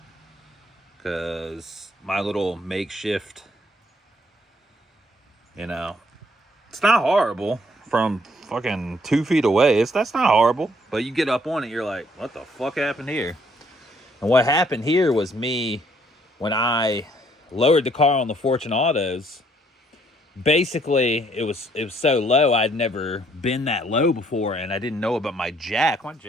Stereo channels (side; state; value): both; normal; correlation 0.66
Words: because my little makeshift, you know, it's not horrible from fucking 2 feet away. That's not horrible, but you get up on it, you're like, what the fuck happened here? And what happened here was me, when I lowered the car on the Fortune Autos, basically it was so low, I'd never been that low before, and I didn't know about my jack. My